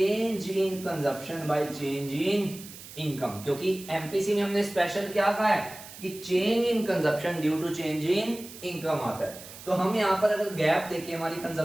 in consumption by change in income, क्योंकि एमपीसी में हमने स्पेशल क्या कहा है कि change in consumption due to change in income आता है। तो हम यहाँ पर अगर गैप देखें हमारी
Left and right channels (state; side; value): noise; right; hiss, 15 dB below the sound